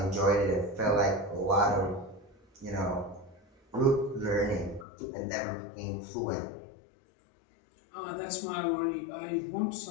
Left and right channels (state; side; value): drops out; right; at 4.9 s